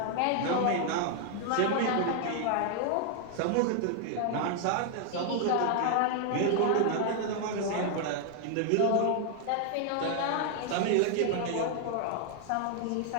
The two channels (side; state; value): both; different; correlation 0.00